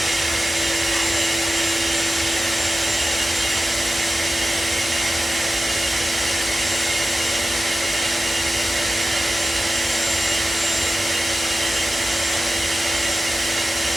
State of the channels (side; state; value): both; normal; correlation 0.94